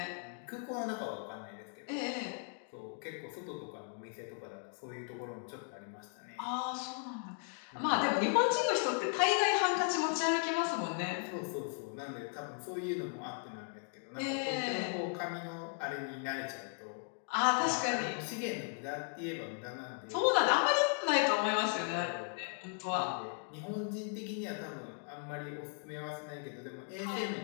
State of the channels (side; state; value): right; silent; 53 dB below the other